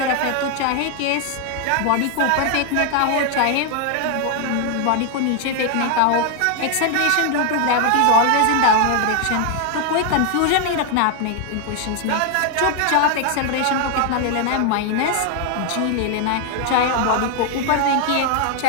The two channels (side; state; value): both; different; correlation 0.00